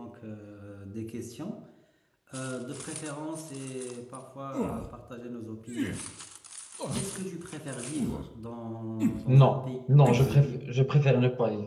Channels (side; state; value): both; identical; correlation 1.00